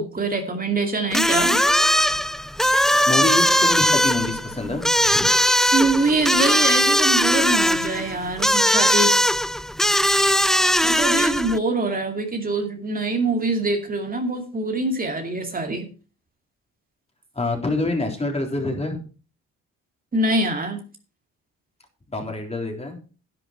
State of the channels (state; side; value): normal; both; correlation 0.71